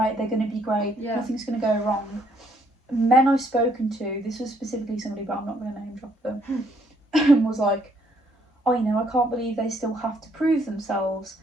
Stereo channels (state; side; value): normal; both; correlation 0.68